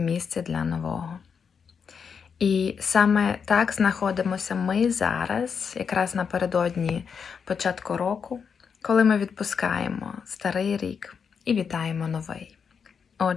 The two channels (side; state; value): right; quieter; 6.4 dB